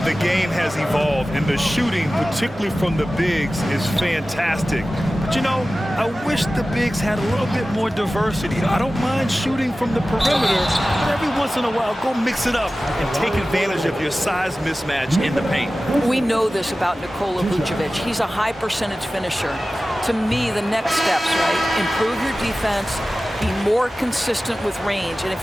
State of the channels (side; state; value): both; normal; correlation 0.96